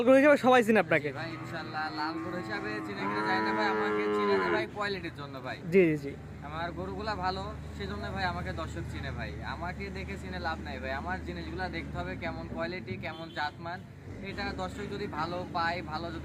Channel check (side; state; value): both; identical; correlation 1.00